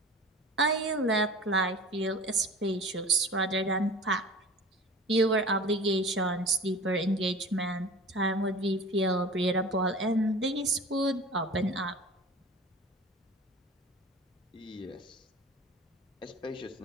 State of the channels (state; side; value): normal; both; correlation 0.39